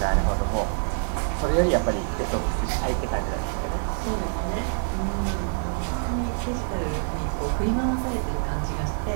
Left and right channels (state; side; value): silent; left; digital silence